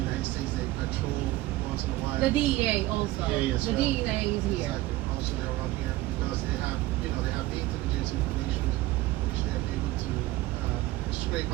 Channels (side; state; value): left; quieter; 17.7 dB